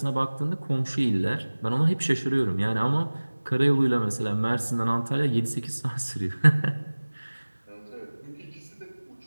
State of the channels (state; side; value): inverted; both; correlation -1.00